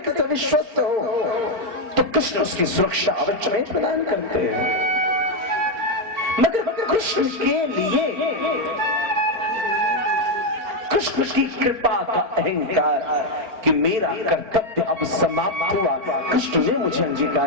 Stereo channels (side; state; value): left; late; 4.4 ms